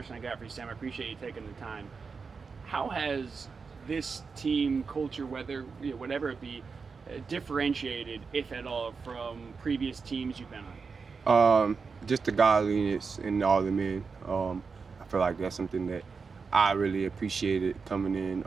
I got for you, Sam. I appreciate you taking the time. How has this team culture, whether whatever it be, differentiated, if at all, from previous teams you've been on? Just the godliness in all the men. I feel like that's something that I really appreciated coming in.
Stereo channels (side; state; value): left; quieter; 5.1 dB